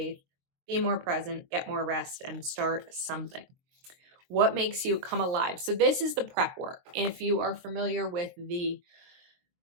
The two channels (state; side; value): late; left; 23 ms